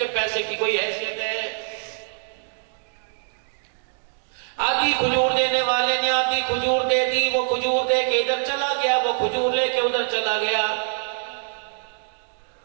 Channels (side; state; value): left; silent; digital silence